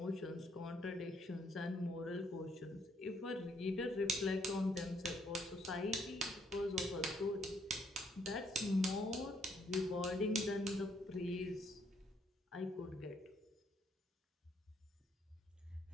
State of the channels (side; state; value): both; normal; correlation 0.69